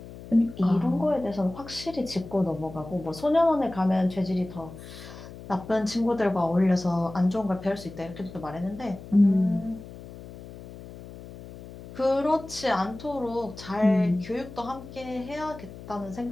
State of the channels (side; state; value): left; noise; hum, 15 dB below the sound